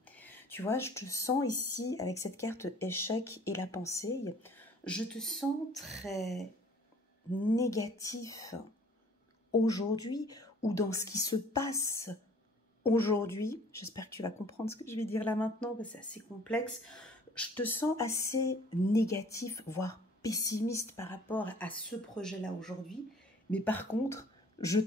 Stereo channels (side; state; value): both; normal; correlation 0.54